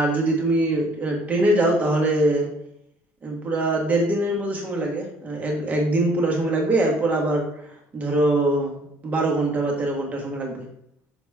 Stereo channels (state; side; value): normal; both; correlation 0.59